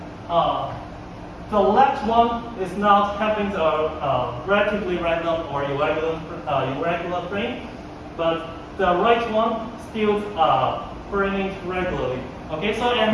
the left one is not having a relatively random or irregular frame, but the right one still burning regularly. Okay, so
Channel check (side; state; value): both; identical; correlation 1.00